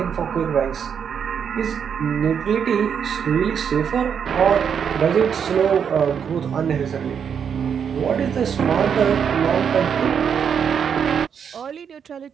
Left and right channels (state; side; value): quieter; left; 7.5 dB